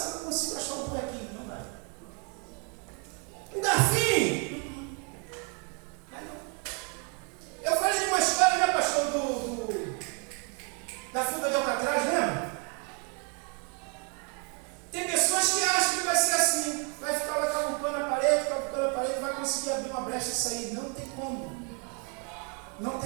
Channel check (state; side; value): quieter; left; 37.2 dB